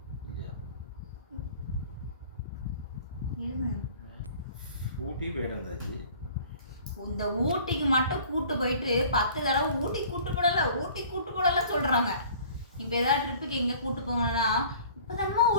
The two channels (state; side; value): inverted; both; correlation -0.49